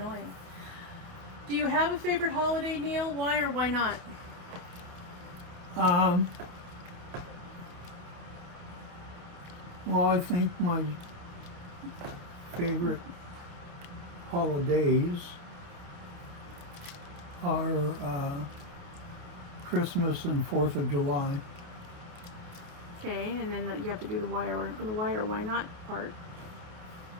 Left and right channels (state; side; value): late; left; 28 ms